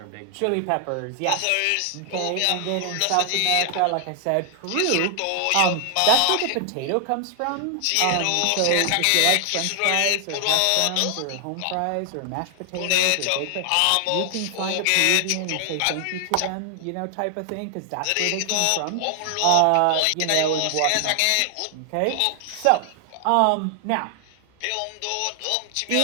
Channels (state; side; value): different; both; correlation 0.00